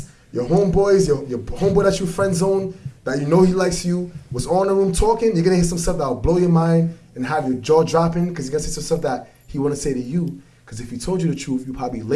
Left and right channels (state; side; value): identical; both; correlation 1.00